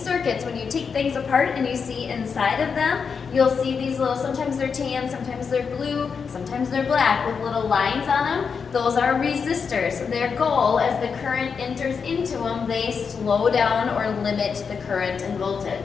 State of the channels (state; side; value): quieter; right; 5.9 dB